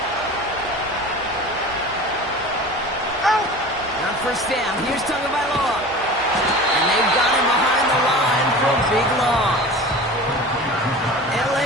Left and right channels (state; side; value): normal; both; correlation 0.37